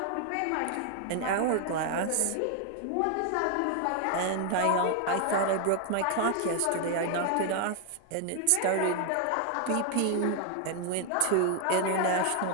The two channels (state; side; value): different; both; correlation 0.00